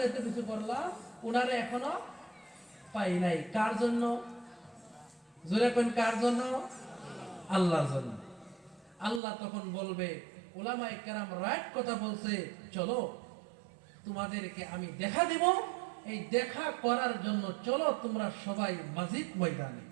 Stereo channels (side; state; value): left; drops out; at 9.2 s